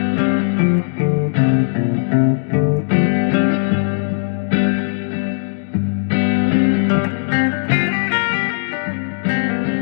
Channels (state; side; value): silent; right; digital silence